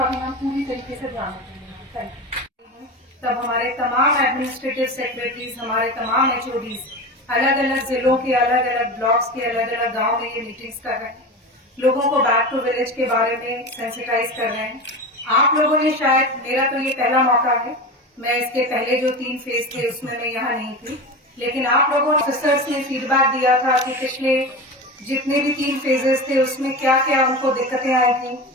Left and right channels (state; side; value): normal; both; correlation 0.26